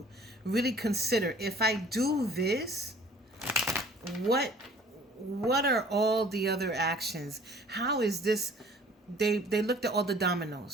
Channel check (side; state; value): both; normal; correlation 0.52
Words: really consider, if I do this, what are all the other actions? How is this? They looked at all the